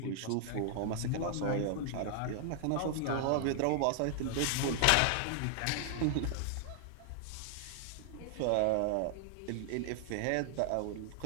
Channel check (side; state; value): both; different; correlation 0.00